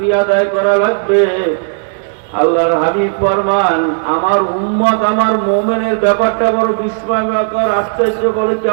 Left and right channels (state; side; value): silent; left; digital silence